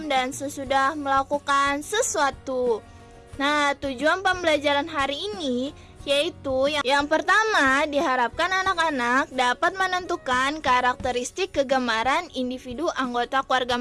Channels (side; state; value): both; identical; correlation 1.00